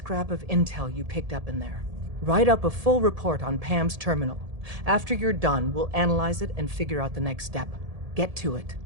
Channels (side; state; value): left; late; 1.7 ms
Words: of intel you picked up in there. Write up a full report on Pam's terminal. After you're done, we'll analyze it and figure out the next step. Get to it.